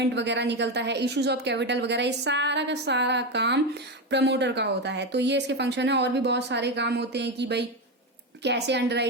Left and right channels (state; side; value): normal; both; correlation 0.13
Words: वगैरह निकलता है, इश्यूज ऑफ कैपिटल वगैरह, ये सारा का सारा काम प्रमोटर का होता है। तो ये इसके फंक्शन है। और भी बहुत सारे काम होते हैं कि भाई कैसे अंडर